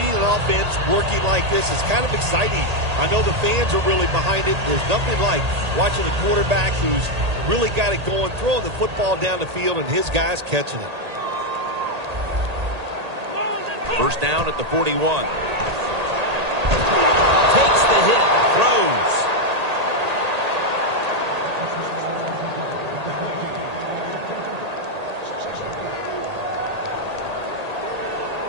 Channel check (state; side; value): late; left; 1.8 ms